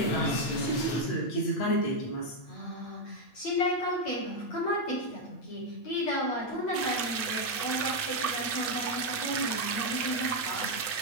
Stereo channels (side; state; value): right; late; 8.6 ms